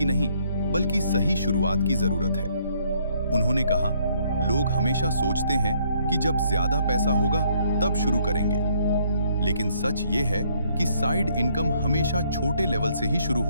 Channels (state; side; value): inverted; both; correlation -0.67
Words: नहीं, बल्कि सही शुरुआत की जरूरत है। उन्होंने कहा, लोग हमेशा सोचते हैं कि जब ज्यादा पैसा होगा तब शुरू करेंगे, लेकिन सच ये है कि साइड इनकम हमेशा छोटे लेवल से ही शुरू